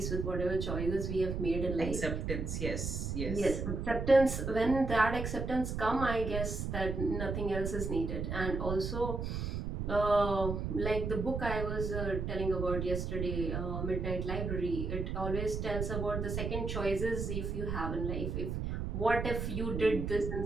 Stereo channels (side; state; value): right; noise; rumble, 3 dB below the sound